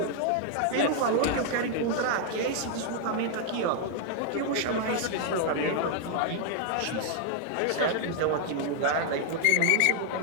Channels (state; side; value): different; both; correlation 0.00